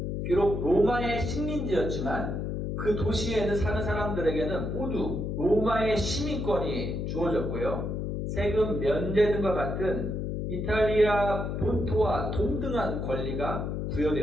비록 로마의 식민지였지만 그 도시에는 사는 사람들에게는 모두 로마의 시민권이 주어졌고요. 세금 면제 등과 같은 이탈리아 본토와 동등한 권리가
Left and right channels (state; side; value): noise; left; hum, 2 dB below the sound